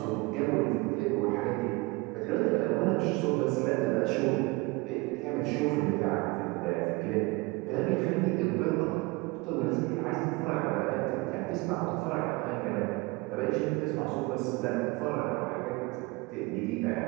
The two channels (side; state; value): left; quieter; 24.8 dB